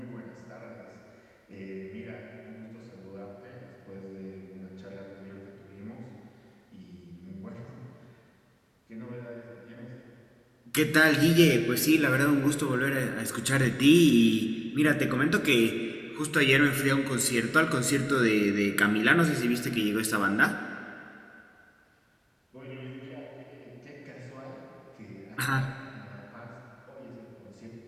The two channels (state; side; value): identical; both; correlation 1.00